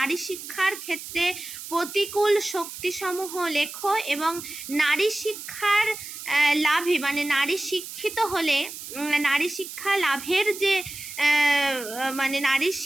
শিক্ষার ক্ষেত্রে প্রতিকূল শক্তিসমূহ লেখো এবং নারী শিক্ষার লাভে মানে নারী শিক্ষিত হলে নারী শিক্ষা লাভের যে মানে নারী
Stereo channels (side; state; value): right; noise; hiss, 11 dB below the sound